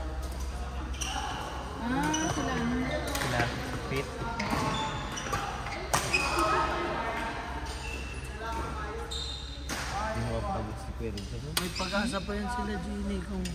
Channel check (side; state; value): both; identical; correlation 1.00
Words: Ah, sila ano. Sila, fit. Hindi mo mapagod si Kuya Rizal. May pag-asa pa yan sila, Gini, kung